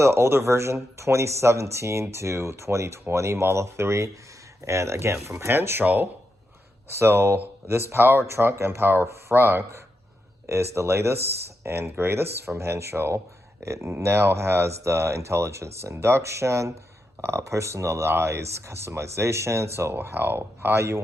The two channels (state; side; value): normal; both; correlation 0.85